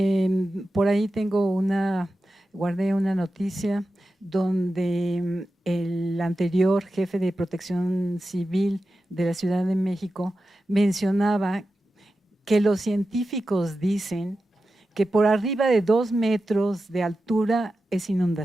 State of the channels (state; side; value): normal; both; correlation 0.92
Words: Por ahí guardé una noticia donde el anterior jefe de Protección Civil de la Ciudad de México mencionaba que los científicos dicen que por arriba de 2 metros de altura es